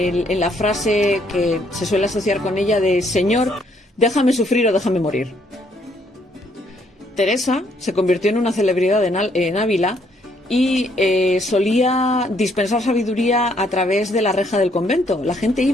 la frase que se suele asociar con ella de Señor, déjame sufrir o déjame morir. Teresa se convirtió en una celebridad en Ávila y solía dispensar sabiduría a través de la reja del convento. La gente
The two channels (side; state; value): both; normal; correlation 0.69